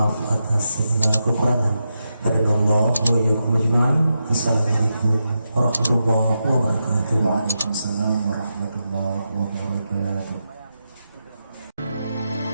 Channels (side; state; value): both; inverted; correlation -0.87